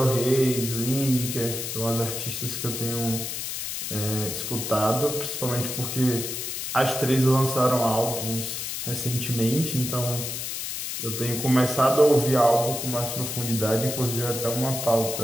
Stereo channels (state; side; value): noise; left; hiss, 4 dB below the sound